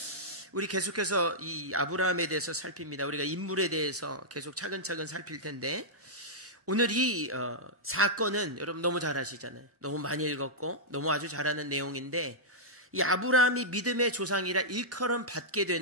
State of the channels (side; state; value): both; normal; correlation -0.10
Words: 우리 계속해서 이 아브라함에 대해서 살핍니다. 우리가 인물에 대해서 계속 차근차근 살필 텐데, 오늘 이 사건은 여러분 너무 잘 아시잖아요. 너무 많이 읽었고 너무 아주 잘 아는 내용인데, 이 아브라함이 믿음의 조상이라 일컬음 받게